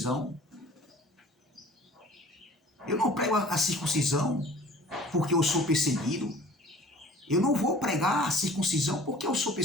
Eu não prego a circuncisão porque eu sou perseguido. Eu não vou pregar a circuncisão porque eu sou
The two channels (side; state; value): both; normal; correlation 0.48